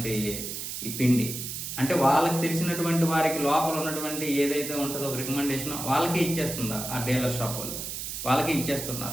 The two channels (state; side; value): noise; right; hiss, 6 dB below the sound